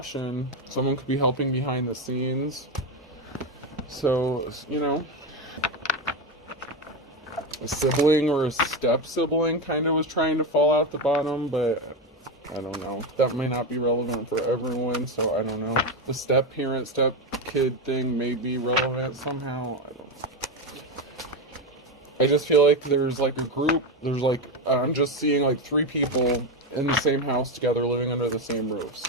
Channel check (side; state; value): both; normal; correlation 0.13